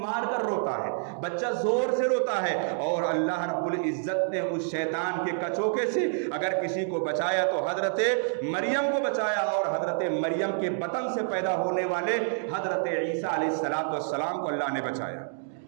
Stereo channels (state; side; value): silent; left; digital silence